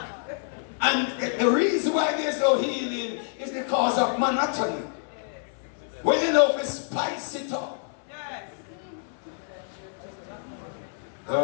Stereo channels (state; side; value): silent; right; 60 dB below the other